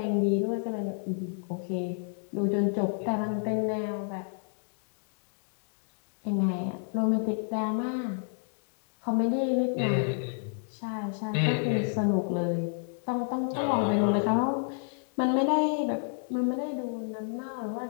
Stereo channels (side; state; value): right; silent; digital silence